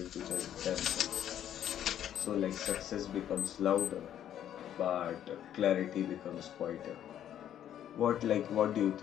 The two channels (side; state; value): right; quieter; 10.6 dB